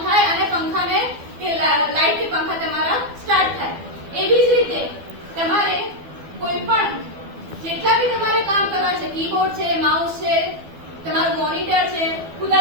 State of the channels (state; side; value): late; left; 12 ms